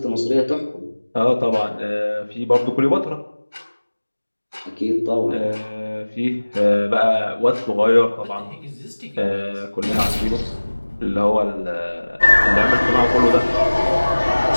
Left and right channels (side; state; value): both; inverted; correlation -1.00